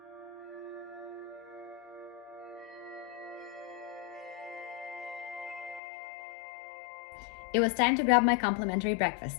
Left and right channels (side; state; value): right; drops out; at 5.8 s